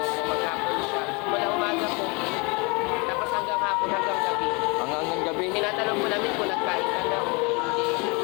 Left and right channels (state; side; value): quieter; right; 29.6 dB